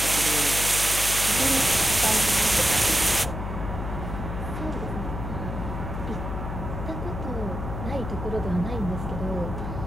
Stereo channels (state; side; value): noise; left; hum, 5 dB below the sound